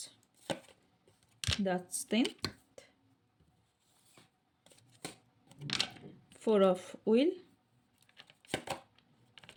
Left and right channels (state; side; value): identical; both; correlation 1.00